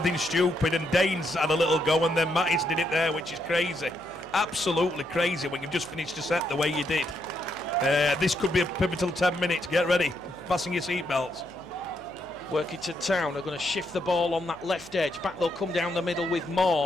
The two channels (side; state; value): left; noise; hum, 25 dB below the sound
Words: stupid, and Dane's had a little go, and then Mattis did it there, which is crazy. Absolutely crazy when you've just finished a set the way you did. This could be a pivotal 10 minutes. Get ready, fasten your seatbelts. Workington Town are going to shift the ball on that left edge. Back they'll come down the middle with